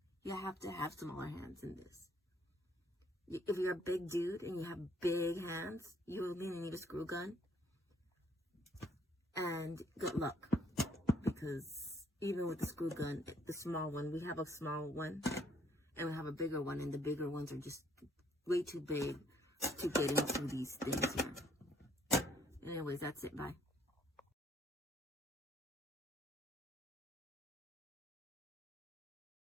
You have to have smaller hands in this. If you're a big dude and you have big hands, you will need a screw gun. And good luck, because even with the screw gun, the small one, we have a small one and we have a bigger one, and the bigger ones are just way too big to get into these things here. Anyways, that's it. Bye.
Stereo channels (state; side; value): normal; both; correlation 0.65